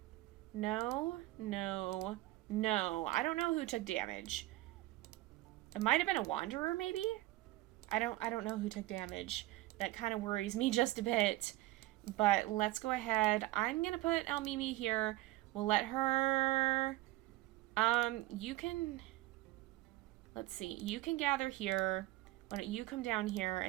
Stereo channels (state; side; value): quieter; left; 17.8 dB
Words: No, no, no. I don't know who took damage. It might have been a wanderer, maybe? I don't know who took damage. That kind of worries me just a bit. But let's go ahead. I'm gonna put El Mimi here. We'll let her... you can... Let's see. You can gather here. Why don't you come down here,